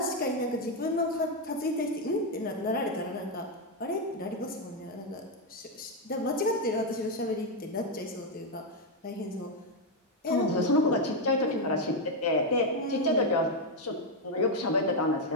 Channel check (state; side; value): normal; both; correlation 0.03